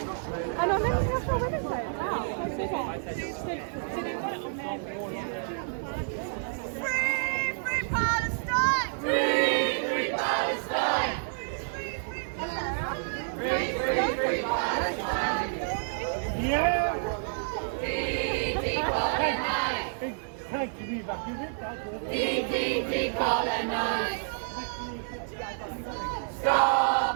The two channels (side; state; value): left; silent; digital silence